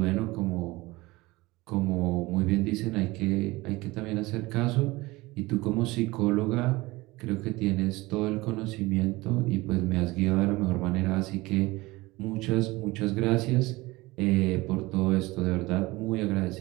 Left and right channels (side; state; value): left; quieter; 21.0 dB